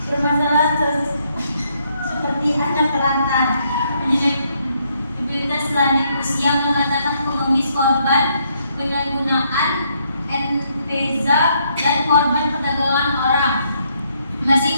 Permasalahan seperti anak terlantar, mobilitas lanjut usia, pengangkatan pengemis korban penyalahgunaan NPZA dan korban perdagangan orang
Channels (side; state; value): both; inverted; correlation -0.73